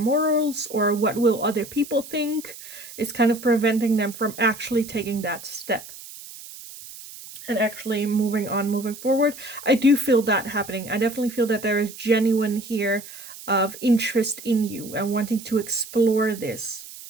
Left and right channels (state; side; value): noise; right; hiss, 15 dB below the sound